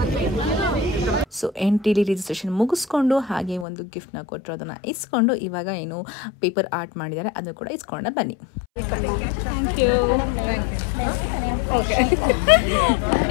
ಸೊ ಎಂಟ್ರಿಲಿ ರಿಜಿಸ್ಟ್ರೇಷನ್ ಮುಗಿಸ್ಕೊಂಡು ಹಾಗೆ ಒಂದು ಗಿಫ್ಟ್ನ ಕೊಟ್ಟರು, ಅದನ್ನು ಇಸ್ಕೊಂಡು ಇವಾಗ ಏನು ಪೇಪರ್ ಆರ್ಟ್ ಮಾಡಿದ್ದಾರೆ ಅದನ್ನು ಕೂಡ ಇಸ್ಕೊಂಡ ಬನ್ನಿ. Thank you. Okay,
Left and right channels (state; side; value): drops out; right; at 3.7 s